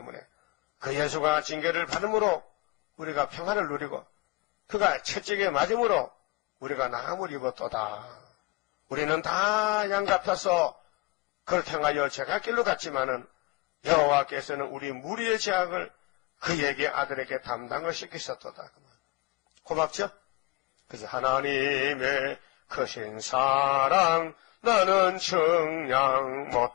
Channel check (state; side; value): quieter; right; 22.5 dB